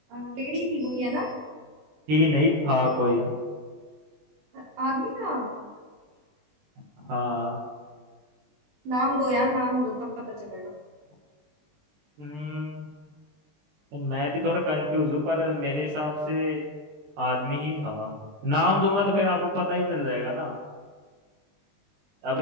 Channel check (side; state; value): left; late; 20 ms